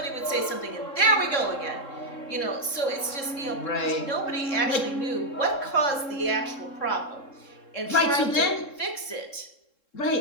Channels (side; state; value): right; late; 3.7 ms